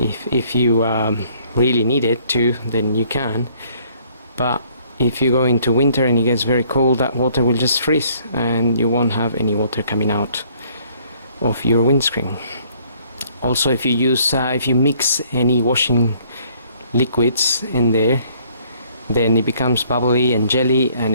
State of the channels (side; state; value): both; inverted; correlation -0.62